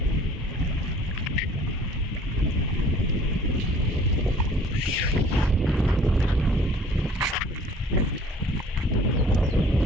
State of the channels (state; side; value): normal; both; correlation 0.52